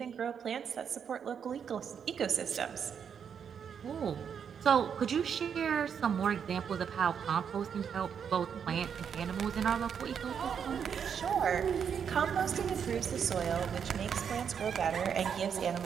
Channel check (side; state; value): left; quieter; 7.5 dB